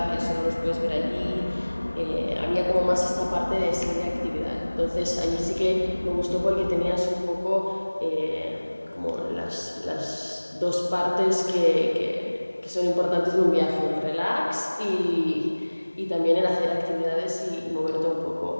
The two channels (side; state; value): both; inverted; correlation -1.00